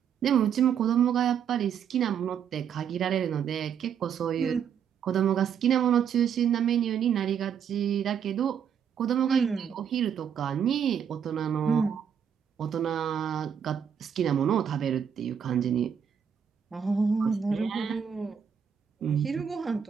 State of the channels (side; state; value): left; quieter; 7.9 dB